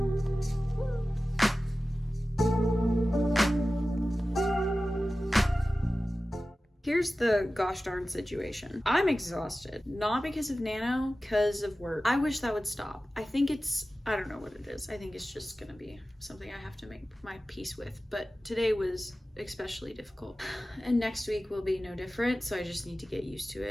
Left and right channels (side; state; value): both; normal; correlation 0.95